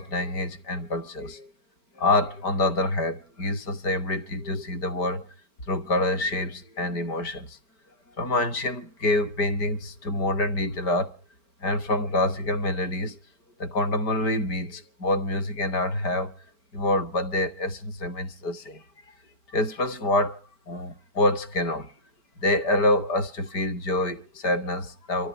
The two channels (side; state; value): right; late; 4.5 ms